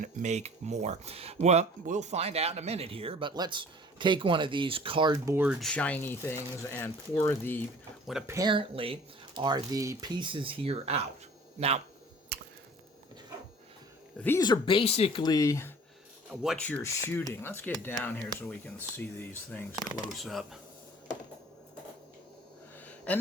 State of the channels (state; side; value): normal; both; correlation 0.48